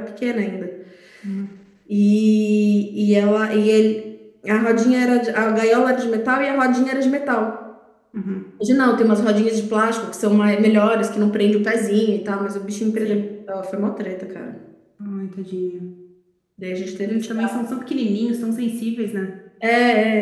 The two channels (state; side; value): identical; both; correlation 1.00